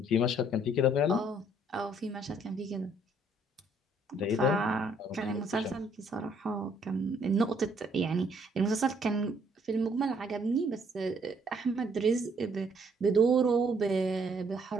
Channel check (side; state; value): both; normal; correlation 0.65